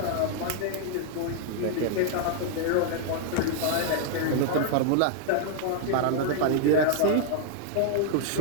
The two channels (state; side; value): different; both; correlation 0.00